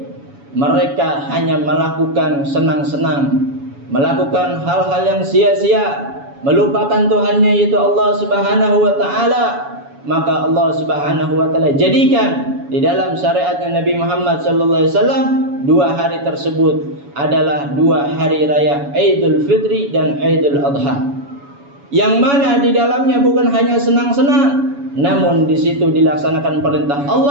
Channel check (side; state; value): left; late; 7.1 ms